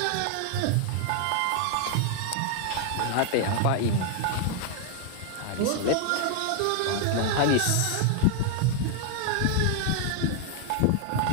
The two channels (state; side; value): different; both; correlation 0.00